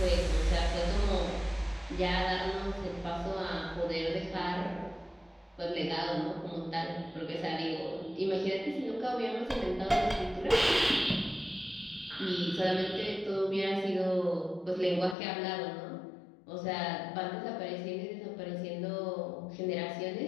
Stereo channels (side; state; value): right; drops out; at 15.2 s